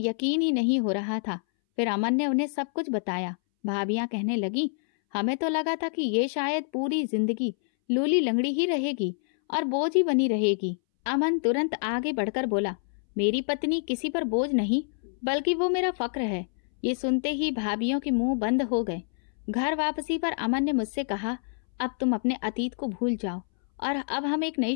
ही नहीं हो रहा था। फिर अमन ने उन्हें सब कुछ बताया। भाभियां कहने लगी, हमें तो लगा था कि ये शायद पूरी जिंदगी लूली लंगड़ी ही रहेगी और बोझ ही बनी रहेगी। अमन तुरंत आगे बढ़कर बोला, मेरी पत्नी किसी पर बोझ नहीं बल्कि वो मेरा फक्र है। ये सुनते ही भाभियों के मुंह बंद हो गए। घर वापसी पर अमन ने मुझसे कहा, अब तुम अपने अतीत को भूल जाओ और अब हम एक नई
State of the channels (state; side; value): silent; right; 60 dB below the other